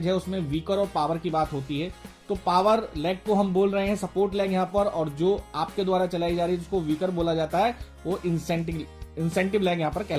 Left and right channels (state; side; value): identical; both; correlation 1.00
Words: है उसमें वीकर और पावर की बात होती है, तो पावर लेग को हम बोल रहे हैं सपोर्ट लेग यहाँ पर, और जो आपके द्वारा चलाई जा रही है जिसको वीकर बोला जाता है वो इंसेंटिव लेग यहाँ पर